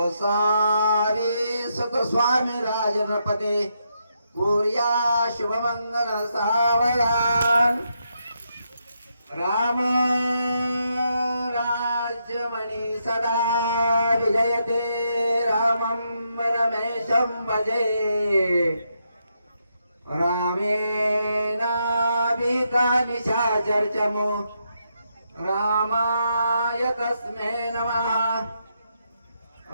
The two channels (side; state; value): both; inverted; correlation -0.80